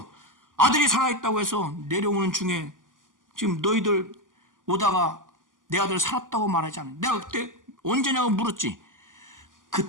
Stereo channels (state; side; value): late; left; 0.88 ms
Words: 아들이 살아있다고 해서 내려오는 중에 지금 너희들 오다가 내 아들 살았다고 말하지 않아. 내가 그때 언제냐고 물었지.